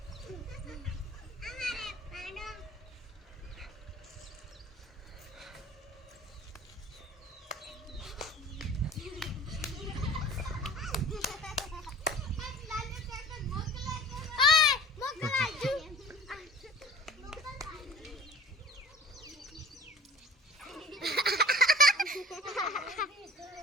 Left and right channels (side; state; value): both; normal; correlation 0.43